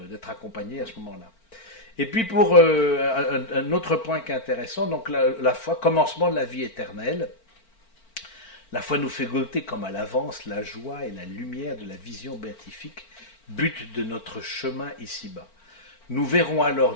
accompagné à ce moment-là. Et puis pour un autre point qui est intéressant, donc la foi, commencement de la vie éternelle. La foi nous fait goûter comme à l'avance la joie et la lumière de la vision béatifique, but de notre chemin ici-bas. Nous verrons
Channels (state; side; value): late; right; 4.4 ms